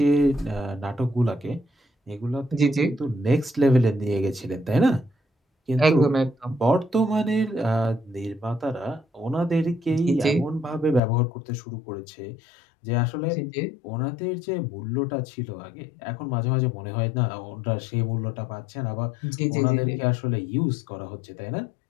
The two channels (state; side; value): drops out; right; at 11.0 s